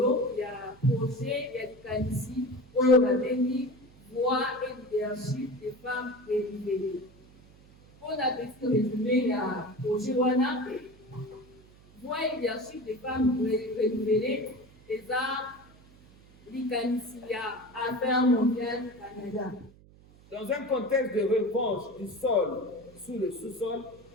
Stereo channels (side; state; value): right; noise; hum, 25 dB below the sound